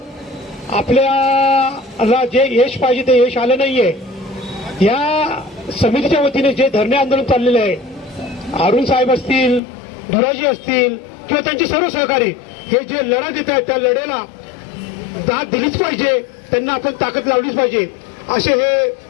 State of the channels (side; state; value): right; drops out; at 9.6 s